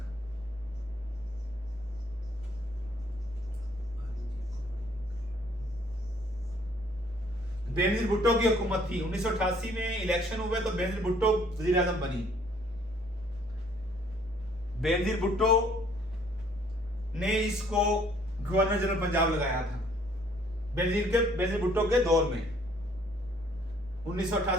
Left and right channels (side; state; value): right; noise; hum, 23 dB below the sound